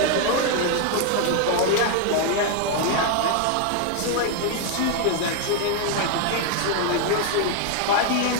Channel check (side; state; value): both; different; correlation 0.01